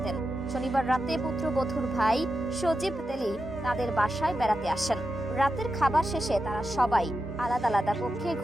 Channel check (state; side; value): normal; both; correlation 0.89